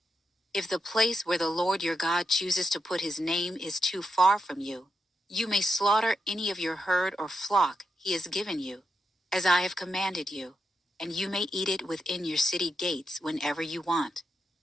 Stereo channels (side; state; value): both; normal; correlation 0.85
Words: If the place where the Lord your God chooses to put his name is too far from you, you may slaughter any of your herd or flock he has given you, as I have commanded you, and you may eat it within your city gates whenever you want.